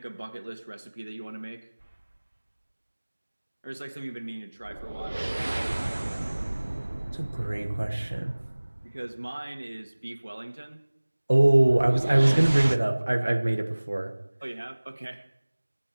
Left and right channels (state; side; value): inverted; both; correlation -1.00